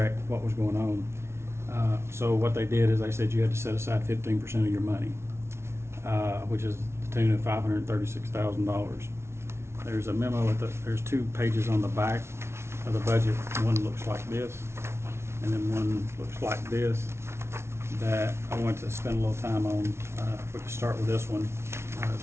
what was going on. So what they did is they said you had to set aside 15% of your money, which is the tune of $536,000. There's a memo there's 2 pages on the back of the budget. One looks like this, and then one looks like this, that I want to spend a little time on. If we could start with this one,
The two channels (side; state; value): left; late; 0.13 ms